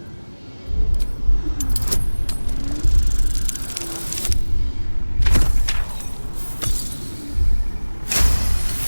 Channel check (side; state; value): both; inverted; correlation -1.00